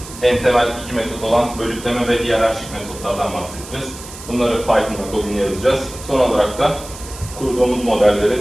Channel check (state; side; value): noise; right; hiss, 15 dB below the sound